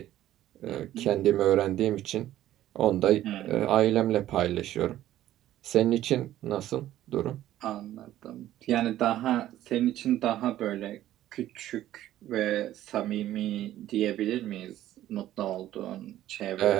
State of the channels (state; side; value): quieter; left; 13.4 dB